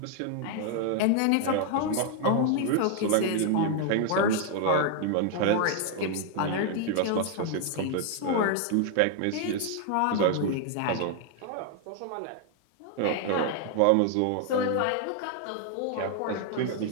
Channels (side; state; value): both; different; correlation 0.00